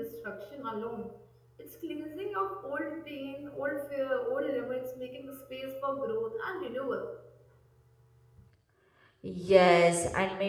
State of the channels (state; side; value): identical; both; correlation 1.00